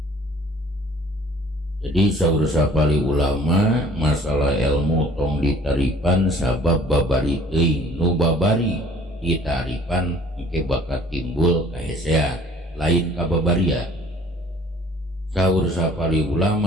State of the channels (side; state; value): both; normal; correlation 0.54